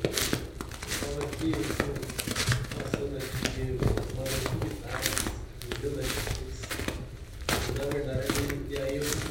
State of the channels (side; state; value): both; identical; correlation 1.00